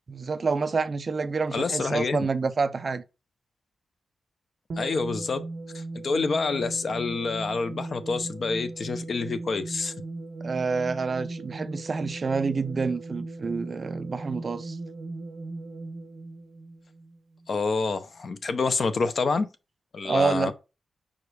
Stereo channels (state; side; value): normal; both; correlation 0.87